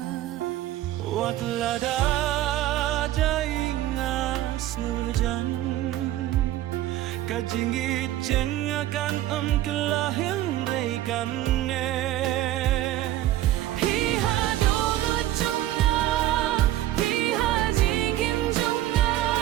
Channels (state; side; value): quieter; left; 14.0 dB